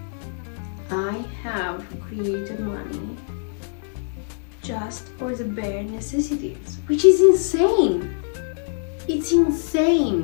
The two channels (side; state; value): right; silent; digital silence